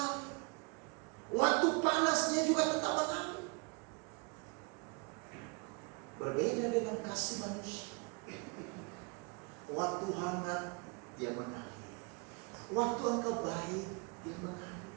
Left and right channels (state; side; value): quieter; left; 31.6 dB